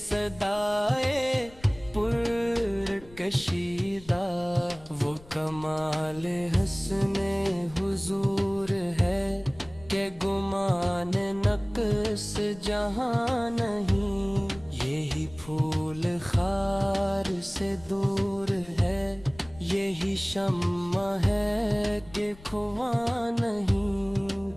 پر کشیدہ وہ کمال حسن حضور ہے کہ گمان نقص جہاں نہیں یہی پھول خار سے دور ہے یہی شمع ہے کہ کھواں نہیں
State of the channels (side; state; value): left; noise; rumble, 21 dB below the sound